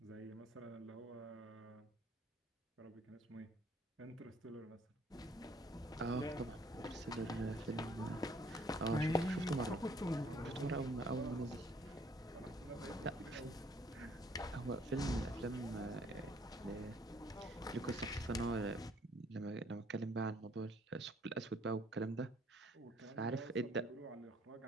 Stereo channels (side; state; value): both; normal; correlation 0.62